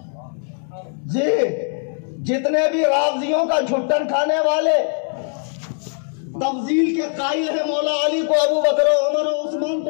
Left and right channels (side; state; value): right; silent; 55 dB below the other